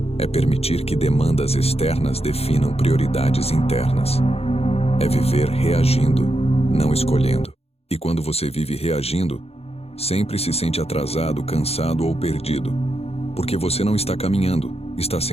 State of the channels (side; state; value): right; late; 0.29 ms